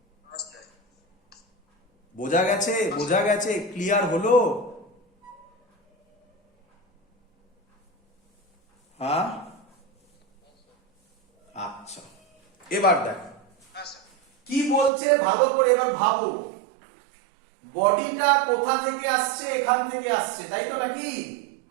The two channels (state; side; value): drops out; left; at 14.9 s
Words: বোঝা গেছে? বোঝা গেছে? ক্লিয়ার হলো? হ্যাঁ, আচ্ছা এবার দেখো হ্যাঁ স্যার। কি বলছে ভালো করে এবার ভাবো। বডিটা কোথা থেকে আসছে? এখান থেকে আসছে, তাই তো নাকি?